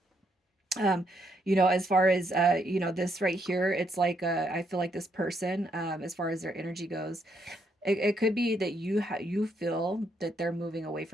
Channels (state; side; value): normal; both; correlation 0.75